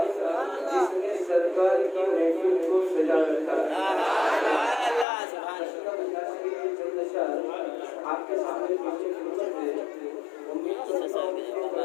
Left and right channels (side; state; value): right; drops out; at 5.1 s